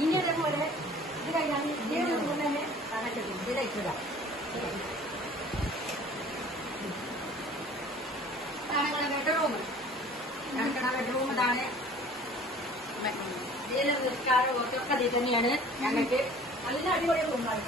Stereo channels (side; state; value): both; normal; correlation 0.48